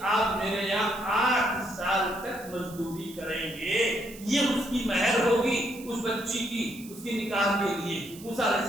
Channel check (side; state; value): right; noise; hiss, 18 dB below the sound